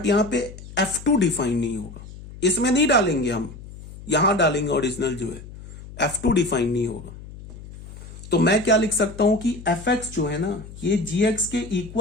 यहां पे f2 डिफाइन नहीं होगा, इसमें नहीं डालेंगे हम, यहां डालेंगे ओरिजिनल जो है, f2 डिफाइन नहीं होगा। तो मैं क्या लिख सकता हूं कि fx जो है ना ये gx के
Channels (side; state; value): left; noise; hum, 15 dB below the sound